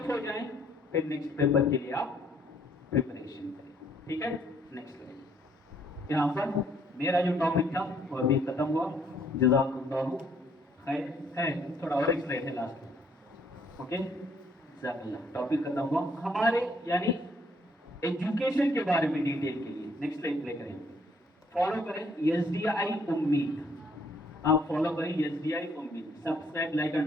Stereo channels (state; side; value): normal; both; correlation 0.66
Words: हो जाए, फिर नेक्स्ट पेपर के लिए आप प्रिपरेशन करें, ठीक है। नेक्स्ट करें, यहाँ पर मेरा जो टॉपिक था वो अभी खत्म हुआ, जज़ाकुमुल्लाह खैर है, थोड़ा और एक स्लाइड है लास्ट में, ओके। जज़ाकल्लाह, टॉपिक खत्म हुआ हमारे, यानी एजुकेशन के बारे में डिटेल के लिए। नेक्स्ट स्लाइड प्ले करें, फॉलो करें SDI उम्मीद, आप फॉलो करें SDI उम्मीद, subscribe like